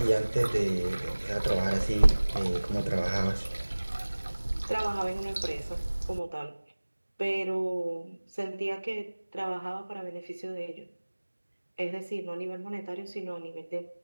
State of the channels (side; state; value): both; inverted; correlation -1.00